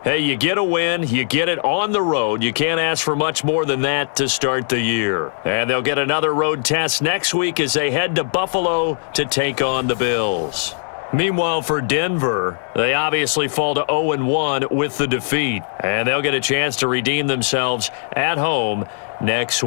hey, you get a win, you get it on the road. You can't ask for much more than that to start the year. And they'll get another road test next week as they head to Buffalo to take on the Bills. Meanwhile, for Denver, they obviously fall to 0-1 with the defeat. And they'll get a chance to redeem themselves at home next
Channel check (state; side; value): silent; right; digital silence